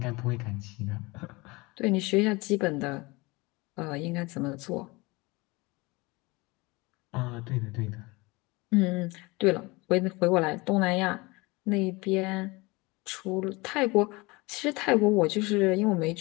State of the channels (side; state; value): right; quieter; 24.1 dB